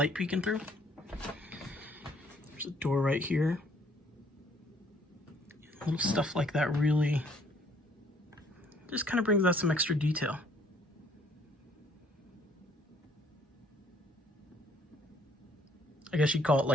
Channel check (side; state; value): both; normal; correlation 0.62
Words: peeking through. There's a door right here. Little stuff like that really just kind of brings out some extra detail. I guess you'd call it